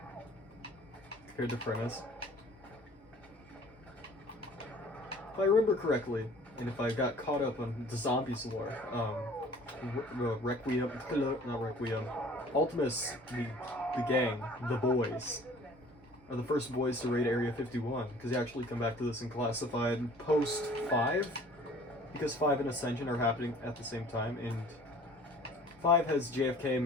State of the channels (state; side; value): normal; both; correlation 0.49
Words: Compared to Prentice. If I remember correctly, and if I got caught up on the zombies lore, Requiem, not Requiem, Ultimus, the gang, the boys, are the first boys to raid Area 51, because they actually come back to this in Classified post 5, because 5 and Ascension are happening at the same time, and 5 has JFK,